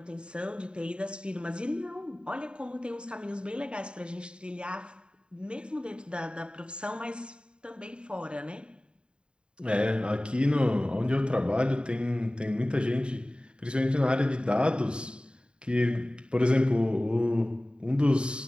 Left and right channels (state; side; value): late; left; 0.051 ms